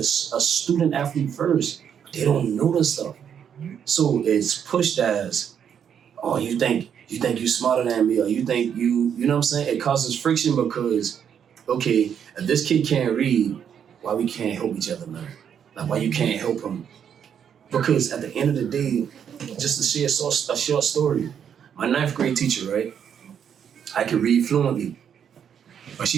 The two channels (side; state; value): left; quieter; 8.3 dB